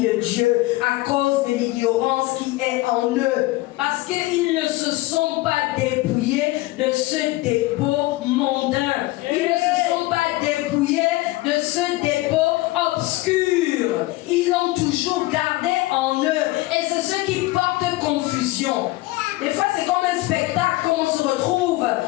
de Dieu à cause de l'ignorance qui est en eux. Parce qu'ils ne se sont pas dépouillés de ce dépôt mondain. Ils ne se sont pas dépouillés de ce dépôt obscur. Ils l'ont toujours gardé en eux. Et c'est ce qui porte confusion. Des fois c'est comme un spectacle quand on se retrouve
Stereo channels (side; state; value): right; quieter; 19.5 dB